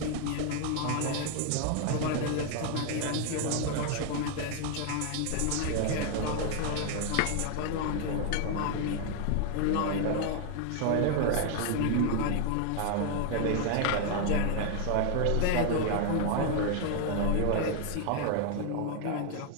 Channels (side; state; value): both; different; correlation 0.00